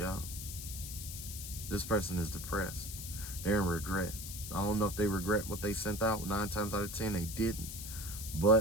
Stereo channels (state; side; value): noise; left; hiss, 8 dB below the sound